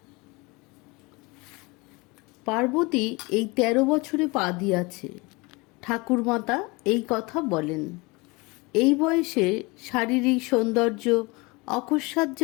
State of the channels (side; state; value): right; quieter; 25.7 dB